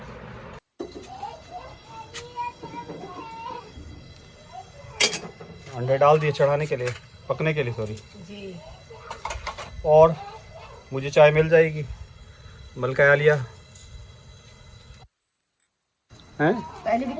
अंडे डाल दिए चढ़ाने के लिए, पकने के लिए, सॉरी जी। और मुझे चाय मिल जाएगी? मलका लिया हैं? पहले भी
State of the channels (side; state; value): both; identical; correlation 1.00